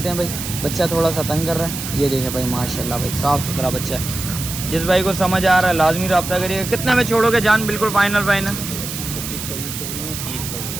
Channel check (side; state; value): right; noise; hiss, 7 dB below the sound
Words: हैं भाई। बच्चा थोड़ा सा तंग कर रहा है। ये देखें भाई माशाल्लाह भाई, साफ़ सुथरा बच्चा है। जिस भाई को समझ आ रहा है लाजमी रब्ता करिएगा। कितने में छोड़ोगे जान? बिल्कुल फाइनल 26